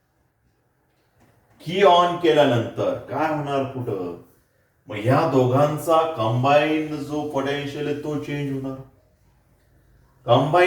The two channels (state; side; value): identical; both; correlation 1.00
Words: काय होणार पुढं, मग ह्या दोघांचा कंबाईंड जो पोटेन्शियल आहे तो चेंज होणार.